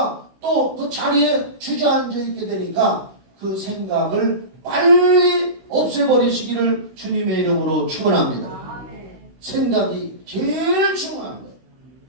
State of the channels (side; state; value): left; late; 16 ms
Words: 또 그 자리에 주저앉아 있게 되니까 그 생각을 빨리 없애버리시기를 주님의 이름으로 축원합니다. 생각이 제일 중요한 거예요.